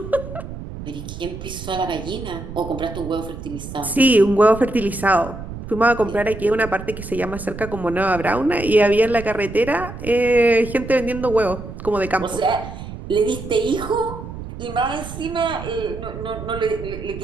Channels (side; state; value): right; noise; rumble, 10 dB below the sound